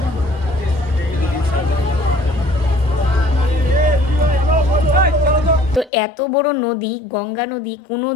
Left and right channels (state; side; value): drops out; right; at 5.9 s